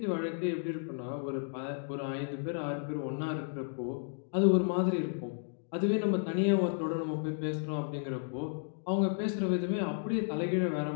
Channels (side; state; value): right; silent; digital silence